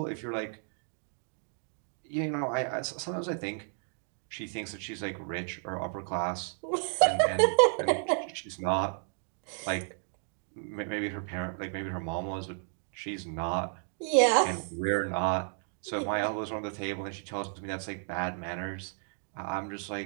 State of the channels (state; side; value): silent; left; 56 dB below the other